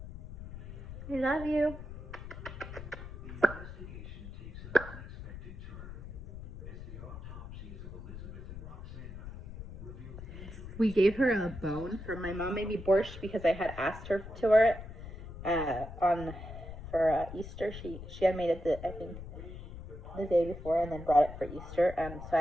I love you. We gave her a bone for my mom made me borscht because I had asked her to her on for Easter. She had made it I think the day before and then brought it for Easter. So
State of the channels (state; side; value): noise; left; rumble, 11 dB below the sound